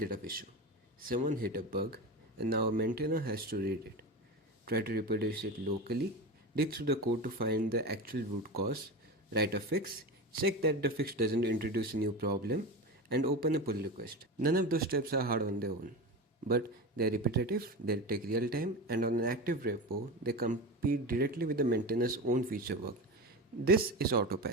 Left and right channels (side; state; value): both; normal; correlation 0.24